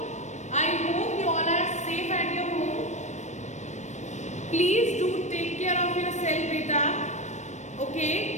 I hope you all are safe at your home. Please do take care of yourself, beta.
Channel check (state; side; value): late; right; 0.34 ms